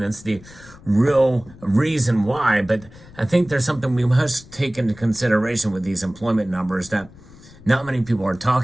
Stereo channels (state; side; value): noise; left; rumble, 21 dB below the sound